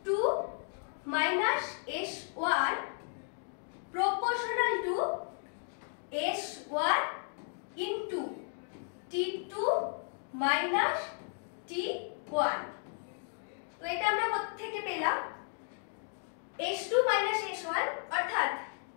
minus S1 proportional to S1 into T2 minus T1। তো এটা আমরা কোথা থেকে পেলাম? S2 minus S1 অর্থাৎ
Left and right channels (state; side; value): silent; right; 55 dB below the other